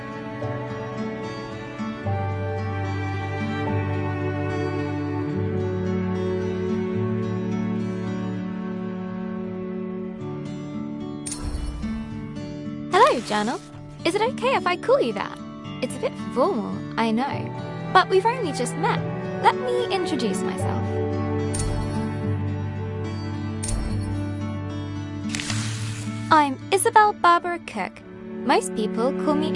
Hello, Journal. Is it okay if I call you that? It's a bit formal, I know, but we've only just met. Let me introduce myself. I'm Isabel Barbara Cook. Most people call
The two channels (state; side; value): identical; both; correlation 1.00